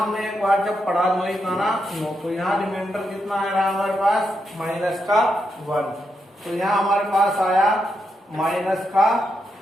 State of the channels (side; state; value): both; normal; correlation 0.83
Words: हमने एक बार जब पढ़ा 9 तो यहाँ रिमाइंडर कितना आ रहा है हमारे पास, माइनस का 1। तो यहाँ हमारे पास आया माइनस का